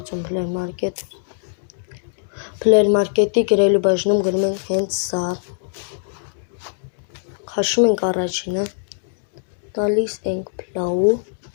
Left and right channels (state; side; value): silent; right; digital silence